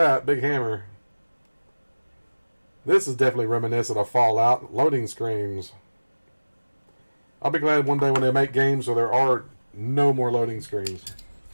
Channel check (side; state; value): both; inverted; correlation -1.00